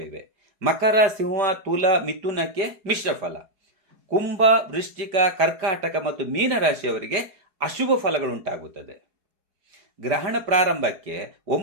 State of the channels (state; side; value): late; left; 4.8 ms